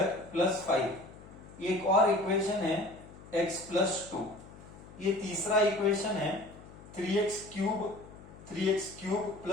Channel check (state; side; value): noise; left; hum, 19 dB below the sound